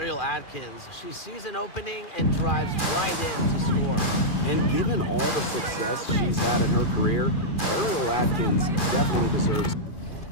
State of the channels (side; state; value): right; late; 2.4 ms